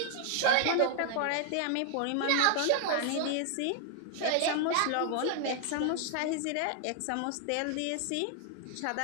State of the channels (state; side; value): different; both; correlation 0.00